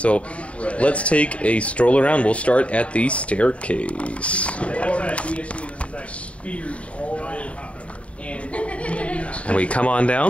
let's take a stroll around. We'll start at the staircase. And we come on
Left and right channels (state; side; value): late; right; 0.063 ms